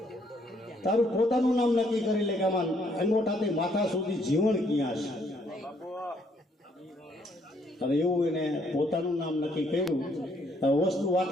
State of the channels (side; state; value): both; normal; correlation 0.68